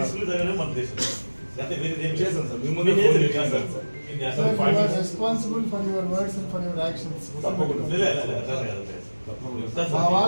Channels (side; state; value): both; inverted; correlation -1.00